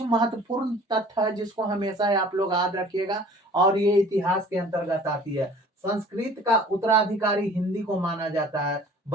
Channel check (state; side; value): normal; both; correlation 0.49